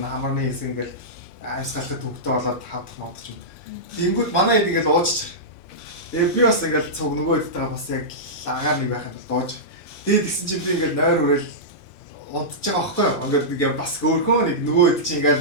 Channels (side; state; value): both; normal; correlation -0.13